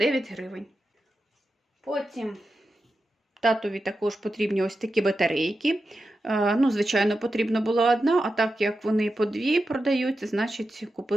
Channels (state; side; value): normal; both; correlation 0.90